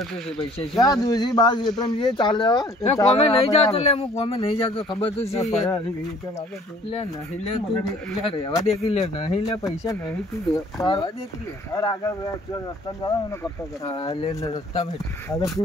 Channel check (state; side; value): normal; both; correlation 0.55